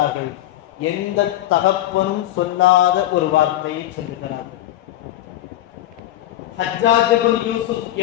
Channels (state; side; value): quieter; right; 13.9 dB